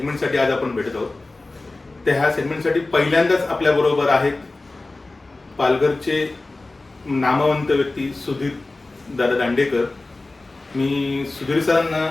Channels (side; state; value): right; quieter; 3.2 dB